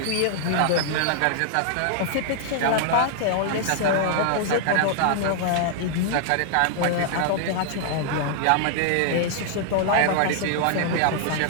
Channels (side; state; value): both; different; correlation -0.01